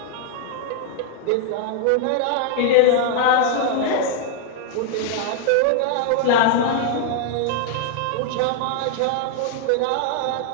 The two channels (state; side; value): different; both; correlation 0.00